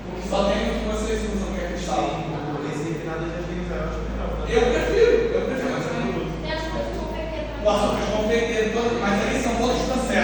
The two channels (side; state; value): both; identical; correlation 1.00